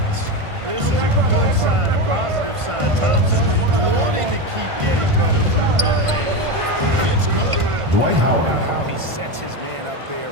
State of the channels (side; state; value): left; late; 1.5 ms